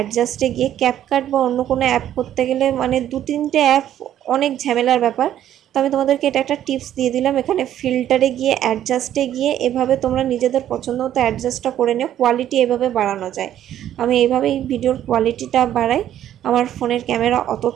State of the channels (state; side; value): quieter; left; 11.4 dB